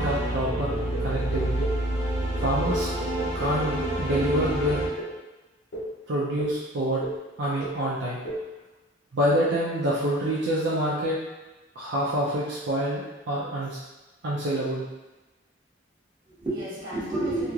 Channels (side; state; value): both; normal; correlation 0.45